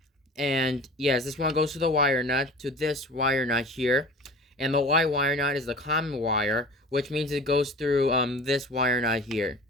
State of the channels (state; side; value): normal; both; correlation 0.39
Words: And yes, this one goes to the wire nut, to this wire nut here, and the white wire nut is the common wire, which means it goes through this wire nut here,